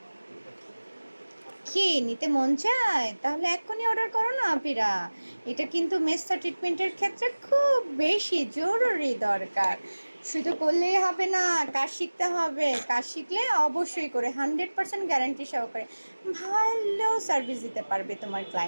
কি নিতে মন চায় তাহলে এক্ষুনি অর্ডার করো না আপিরা। এটা কিন্তু মেসা ট্রিটমেন্টের ক্ষেত্রে খুব বেশি জরুরি দরকার। শুধু করলেই হবে না, কাজ শিখতে হবে। কাজ শিখলে অবশ্যই করে 100% গ্যারান্টি সহকারে ভালো সার্ভিস দিতে পারবে তোমার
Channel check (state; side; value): inverted; both; correlation -1.00